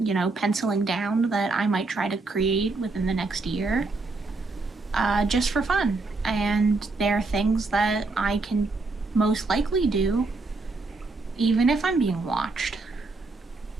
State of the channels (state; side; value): quieter; left; 3.6 dB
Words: penciling down that I might try to create within the next year, just for fun. And they're things that I can most likely do, even if I'm being watched.